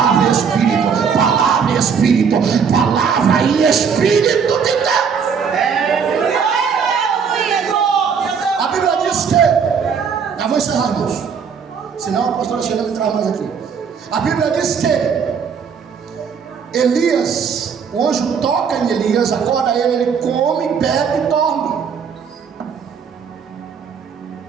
e Espírito, palavra e Espírito, palavra e Espírito de Deus. A Bíblia diz que, já vou encerrar, irmãos, senão a pastora Sheila me traz mais aqui. A Bíblia diz que Elias, o anjo toca em Elias, acorda ele, ele come, bebe e dorme.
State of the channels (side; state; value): left; quieter; 6.5 dB